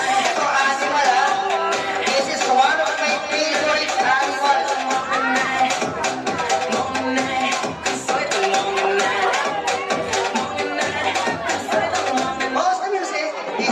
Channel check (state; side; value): identical; both; correlation 1.00